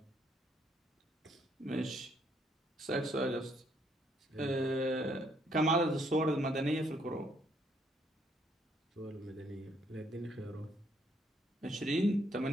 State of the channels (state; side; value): normal; both; correlation 0.69